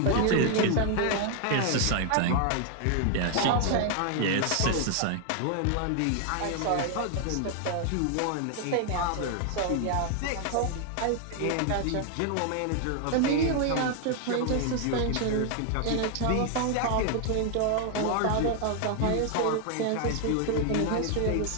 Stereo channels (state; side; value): different; both; correlation 0.00